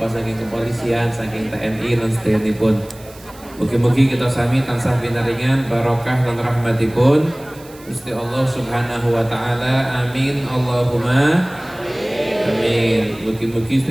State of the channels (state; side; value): noise; right; hiss, 23 dB below the sound